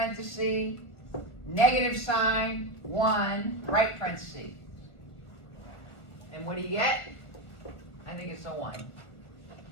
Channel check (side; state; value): right; late; 1.2 ms